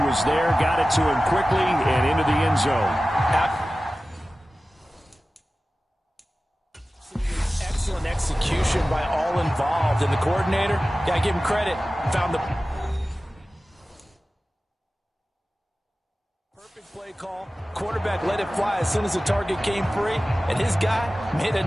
was there, got it to him quickly, and into the end zone. Excellent execution by all involved. And the coordinator, gotta give him credit, found the perfect play call. Quarterback let it fly as soon as the target came free, and his guy made a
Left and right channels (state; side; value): normal; both; correlation 0.96